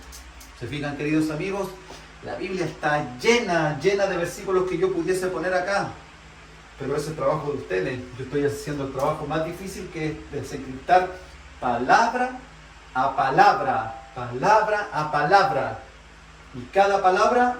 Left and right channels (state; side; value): identical; both; correlation 1.00